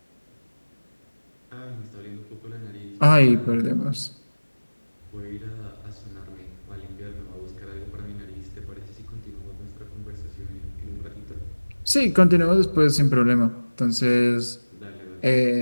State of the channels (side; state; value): both; inverted; correlation -1.00